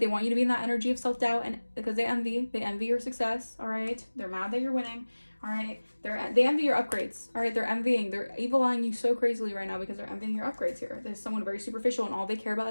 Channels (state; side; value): inverted; both; correlation -1.00